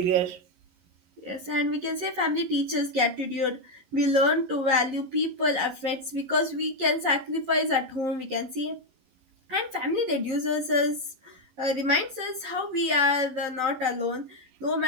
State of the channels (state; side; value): late; left; 11 ms